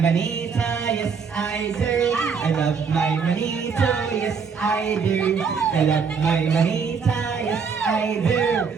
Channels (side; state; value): left; quieter; 5.8 dB